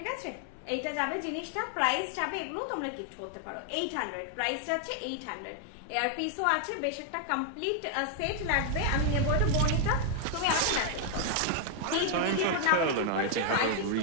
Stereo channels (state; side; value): different; both; correlation 0.00